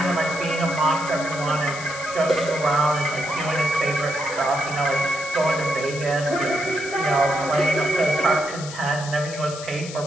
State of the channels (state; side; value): noise; left; hiss, 12 dB below the sound